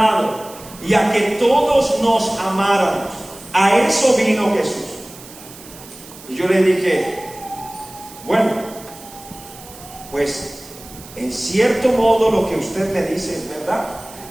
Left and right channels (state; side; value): noise; right; hiss, 18 dB below the sound